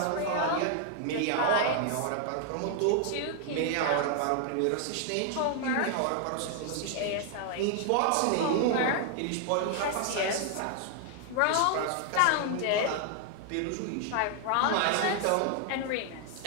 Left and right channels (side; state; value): both; different; correlation 0.00